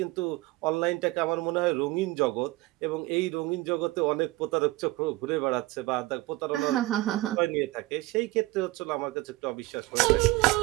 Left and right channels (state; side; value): quieter; left; 19.9 dB